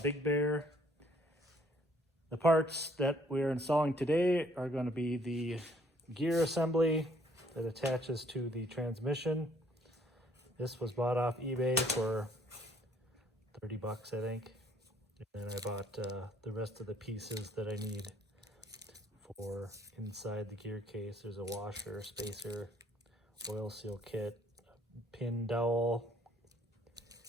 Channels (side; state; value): both; normal; correlation 0.63